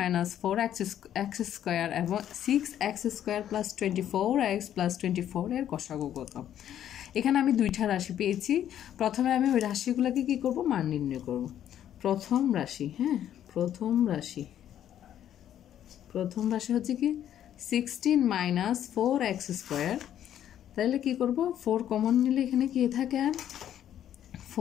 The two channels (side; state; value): right; quieter; 10.7 dB